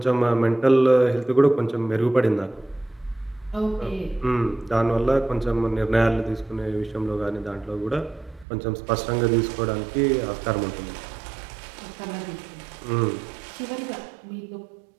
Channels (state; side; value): drops out; left; at 8.5 s